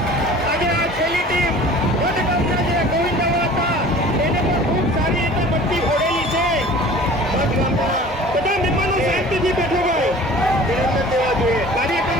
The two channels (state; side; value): normal; both; correlation 0.44